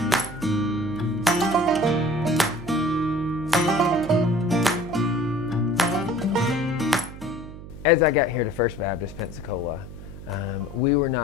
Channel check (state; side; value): noise; right; hum, 13 dB below the sound